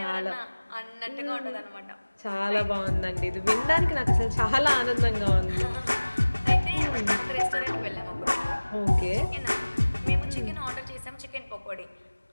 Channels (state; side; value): inverted; both; correlation -1.00